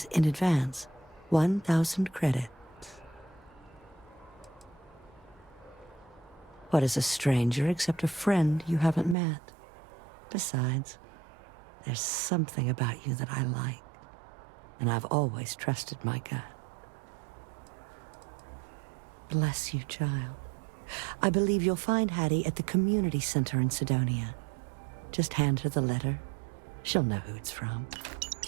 in advance. 1,000 credits. What is a stranger except a friend you haven't met? Besides, there's something about you that I like, and I've always trusted my gut. Bless you, child. I believe you'll find Hattie at the community center in Sidonia. Just hand her the letter. She'll know who it's from.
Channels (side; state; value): left; drops out; at 9.2 s